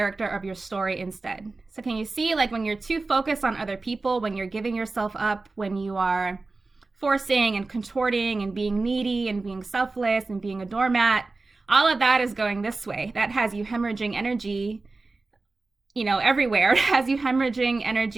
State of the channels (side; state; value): left; quieter; 3.6 dB